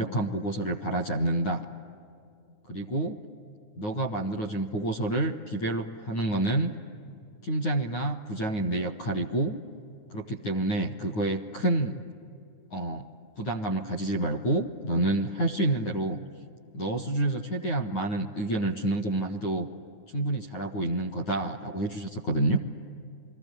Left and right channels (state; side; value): late; right; 9.4 ms